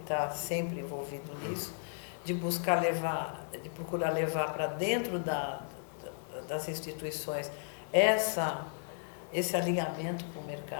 sempre envolvido nisso, de buscar de procurar levar para dentro das instituições esse alinhamento com o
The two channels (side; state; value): right; silent; digital silence